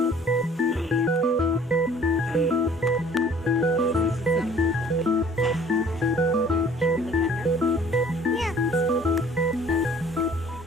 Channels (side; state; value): both; normal; correlation 0.53